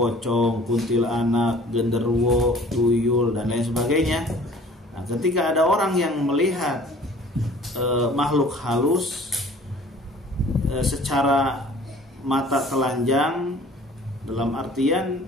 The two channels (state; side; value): normal; both; correlation 0.50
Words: kuntilanak, genderuwo, tuyul, dan lain sebagainya. Nah, ketika ada orang yang melihat makhluk halus secara mata telanjang, dalam artian